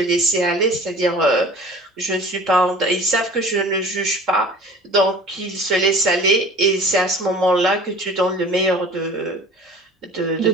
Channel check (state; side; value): normal; both; correlation 0.43